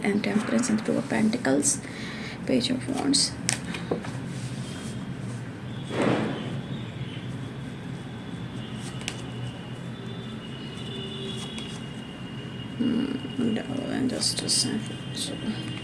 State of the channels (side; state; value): both; identical; correlation 1.00